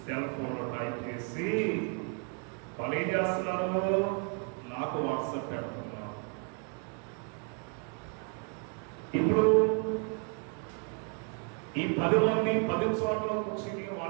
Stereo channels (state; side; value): quieter; left; 36.8 dB